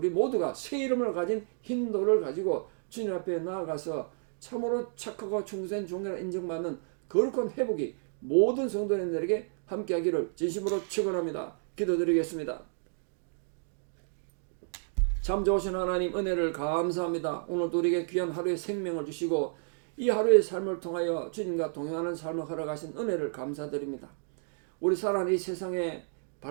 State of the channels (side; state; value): left; silent; digital silence